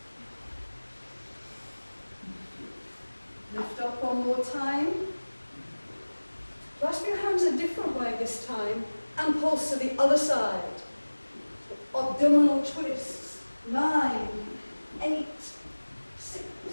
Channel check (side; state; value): both; inverted; correlation -1.00